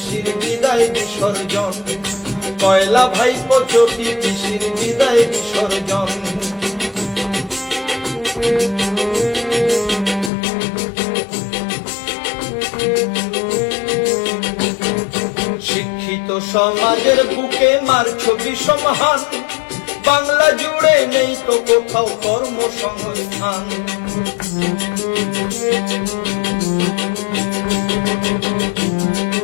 বিদায় বিসর্জন। কয়লা ভাইপো চটি পিসির বিদায় বিসর্জন। শিক্ষিত সমাজের বুকে মারছো বিষমহান। বাংলা জুড়ে নেই তো কোথাও কর্মসংস্থান।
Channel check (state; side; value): drops out; right; at 10.3 s